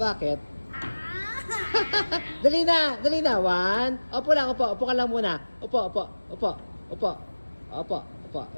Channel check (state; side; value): inverted; both; correlation -1.00